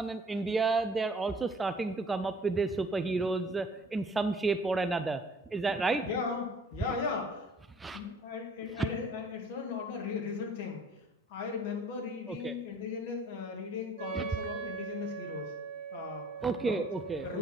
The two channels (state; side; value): normal; both; correlation 0.54